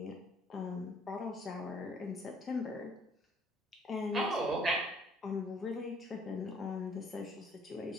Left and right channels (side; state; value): both; normal; correlation 0.61